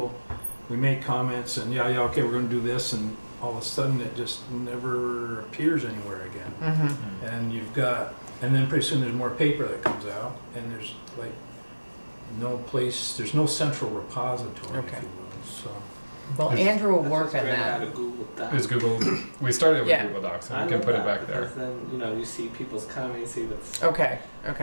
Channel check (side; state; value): both; inverted; correlation -1.00